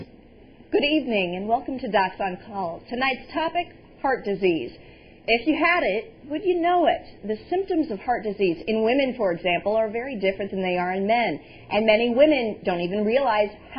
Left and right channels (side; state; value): both; identical; correlation 1.00